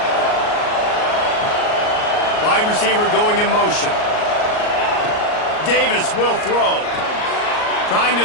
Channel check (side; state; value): right; late; 38 ms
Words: Wide receiver going in motion. Davis will throw. Trying